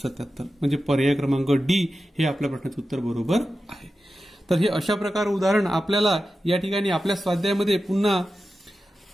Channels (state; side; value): normal; both; correlation 0.92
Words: म्हणजे पर्याय क्रमांक डी हे आपल्या प्रश्नाचं उत्तर बरोबर आहे. तर हे अशा प्रकार उदाहरण आपल्याला या ठिकाणी आपल्या स्वाध्यायामध्ये पुन्हा